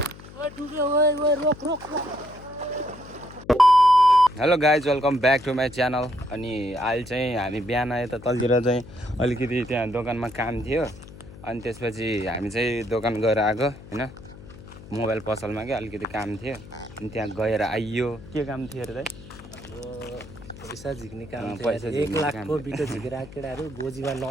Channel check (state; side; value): noise; left; hum, 17 dB below the sound